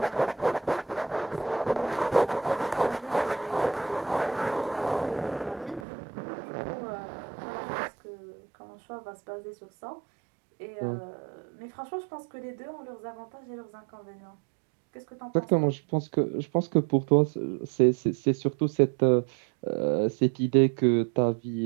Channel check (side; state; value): left; drops out; at 5.9 s